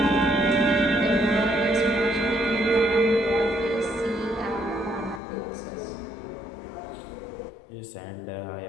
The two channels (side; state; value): right; drops out; at 5.2 s